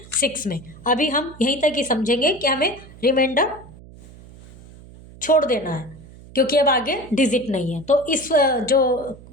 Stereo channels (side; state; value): right; noise; hum, 20 dB below the sound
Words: 6 में। अभी हम यहीं तक ही समझेंगे कि हमें रिमाइंडर छोड़ देना है क्योंकि अब आगे डिजिट नहीं है। तो इस जो